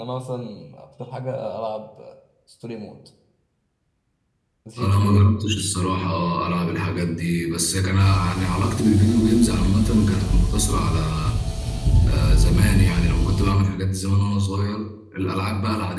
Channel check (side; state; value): both; identical; correlation 1.00